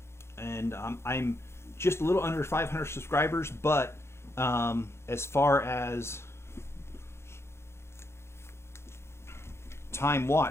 and I'm just a little under 500 subscribers, but as far as time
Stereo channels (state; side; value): late; right; 0.13 ms